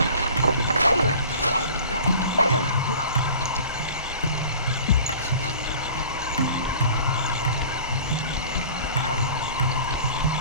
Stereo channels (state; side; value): inverted; both; correlation -0.44